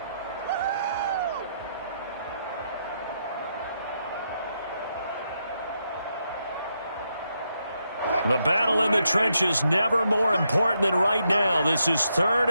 The battle in the trenches never more important than right now. This is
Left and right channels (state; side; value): inverted; both; correlation -0.81